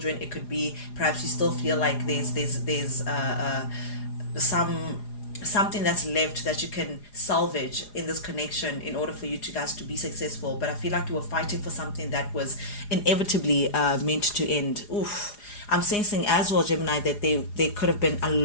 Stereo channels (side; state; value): right; late; 4.9 ms